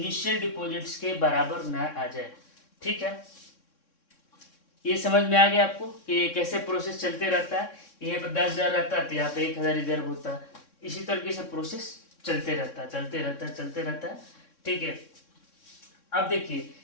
डिपॉजिट्स के बराबर ना आ जाए, ठीक है। ये समझ में आ गया आपको कि ये कैसे प्रोसेस चलते रहता है। यहाँ पे 10,000 रहता है तो यहाँ पे 1,000 रिजर्व होता है। इसी तरीके से प्रोसेस चलते रहता है, चलते रहता है, चलते रहता है, ठीक है। अब देखिए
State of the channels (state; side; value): late; right; 3.6 ms